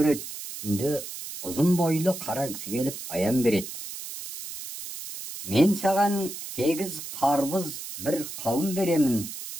Түнде ұзын бойлы қара кісі келіп аян береді. Мен саған 8 қарбыз бір қауын беремін,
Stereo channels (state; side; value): noise; right; hiss, 10 dB below the sound